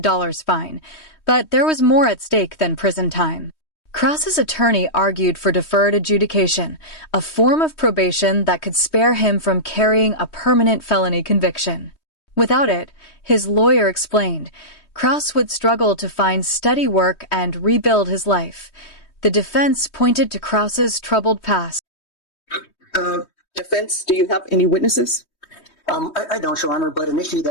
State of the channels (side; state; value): right; late; 3.2 ms